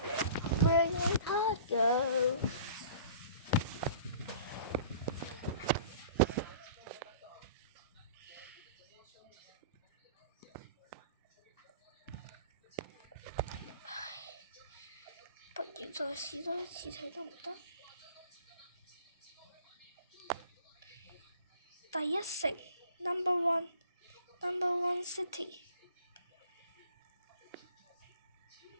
go。不如再試多一次睇得唔得？第一城 ，Number One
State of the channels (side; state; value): both; inverted; correlation -0.47